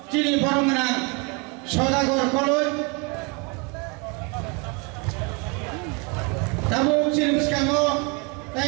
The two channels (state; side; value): quieter; left; 30.1 dB